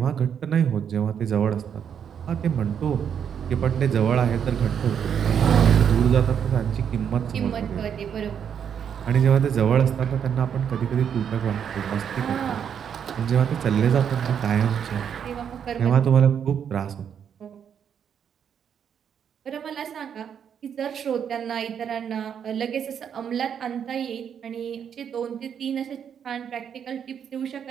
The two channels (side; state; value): left; quieter; 8.1 dB